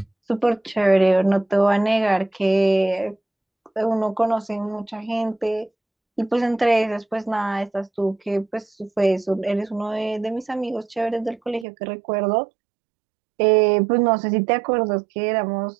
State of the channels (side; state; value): left; drops out; at 11.7 s